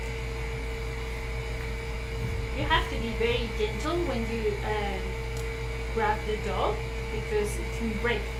You have to be very gentle when you grab the dough because it can break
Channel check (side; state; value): both; identical; correlation 1.00